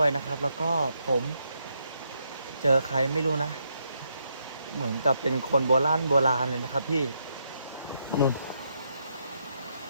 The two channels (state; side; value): inverted; both; correlation -0.78